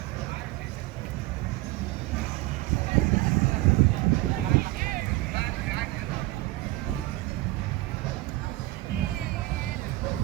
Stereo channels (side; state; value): left; quieter; 18.9 dB